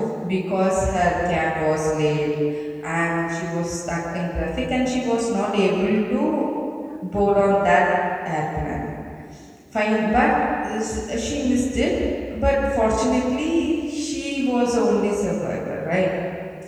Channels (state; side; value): identical; both; correlation 1.00